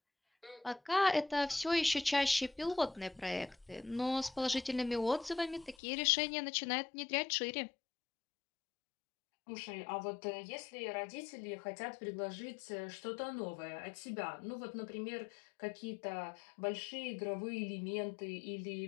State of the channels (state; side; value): drops out; right; at 5.8 s